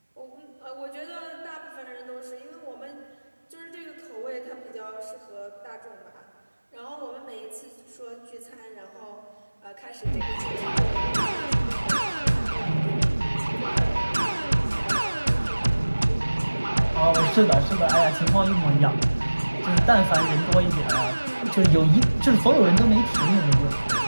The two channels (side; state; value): both; inverted; correlation -1.00